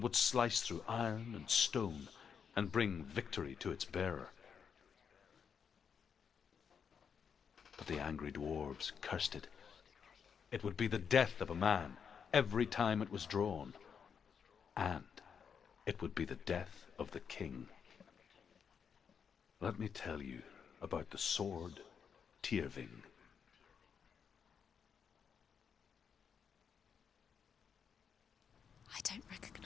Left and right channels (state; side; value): quieter; right; 6.9 dB